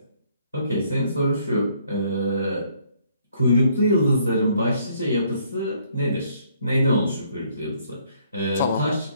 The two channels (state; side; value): inverted; both; correlation -0.66